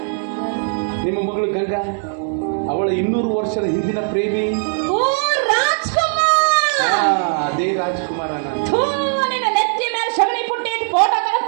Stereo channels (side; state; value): left; silent; digital silence